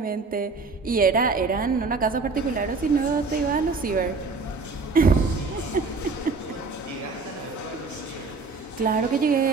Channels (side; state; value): left; quieter; 4.2 dB